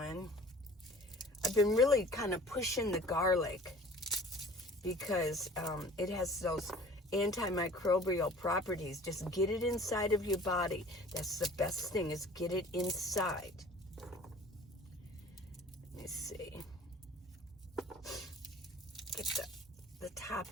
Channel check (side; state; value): both; normal; correlation 0.47